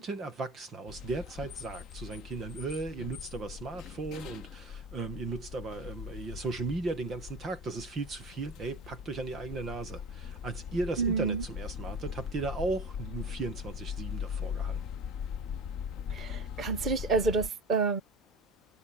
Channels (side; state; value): both; normal; correlation 0.34